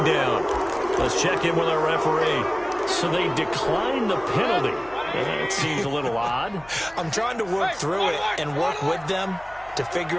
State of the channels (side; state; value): left; noise; hum, 23 dB below the sound